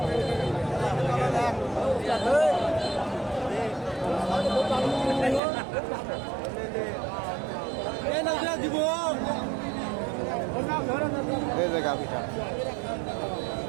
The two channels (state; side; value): drops out; left; at 5.4 s